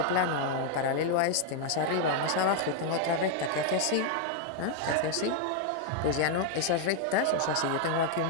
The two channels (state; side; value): different; both; correlation 0.00